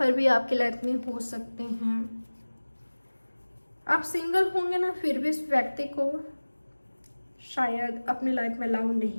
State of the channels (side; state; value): both; inverted; correlation -1.00